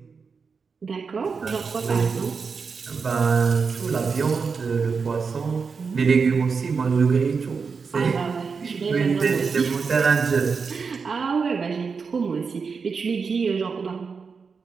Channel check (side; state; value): left; quieter; 5.3 dB